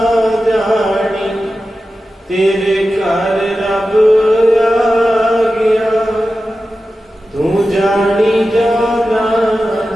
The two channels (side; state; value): both; normal; correlation 0.93